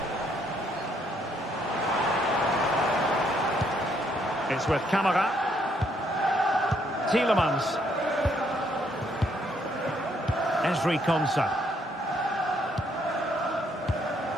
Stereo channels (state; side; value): normal; both; correlation 0.71